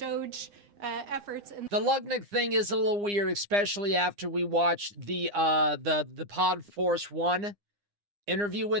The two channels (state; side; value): late; left; 9.8 ms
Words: efforts. The Lutnick thing is a little weird, especially after we watched the Pod Force 1 interview